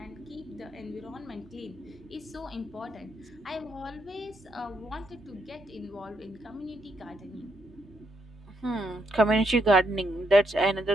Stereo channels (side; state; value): both; normal; correlation 0.77